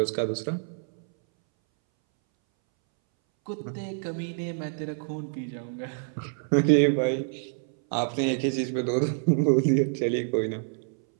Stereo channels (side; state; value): left; silent; 60 dB below the other